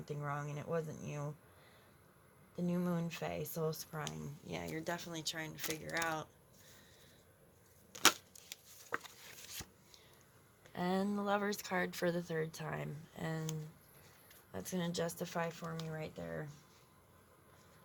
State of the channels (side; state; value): both; identical; correlation 1.00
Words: wrong, and it wasn't you. The New Moon Fae, Soul Scrying. Yeah, you're definitely trying to figure out. And the Lover's card for the 3rd time, and that's going to justify for me right there.